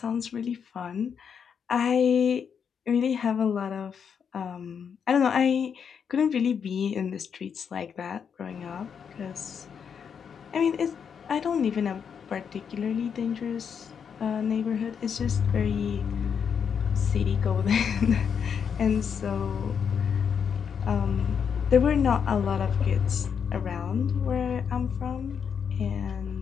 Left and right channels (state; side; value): quieter; right; 7.1 dB